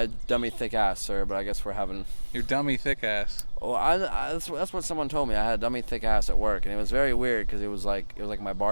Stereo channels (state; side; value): inverted; both; correlation -1.00